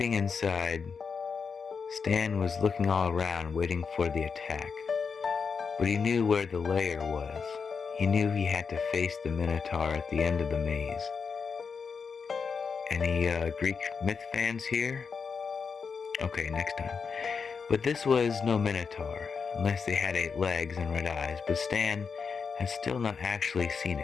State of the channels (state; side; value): quieter; right; 5.6 dB